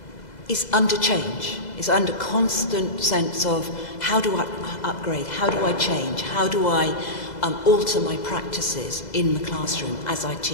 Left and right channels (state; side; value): late; right; 2.0 ms